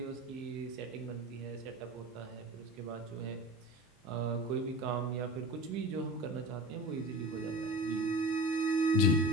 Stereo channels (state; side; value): normal; both; correlation 0.34